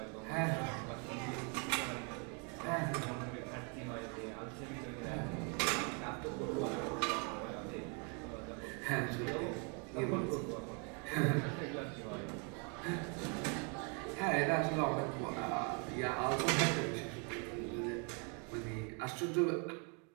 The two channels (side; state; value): left; quieter; 36.2 dB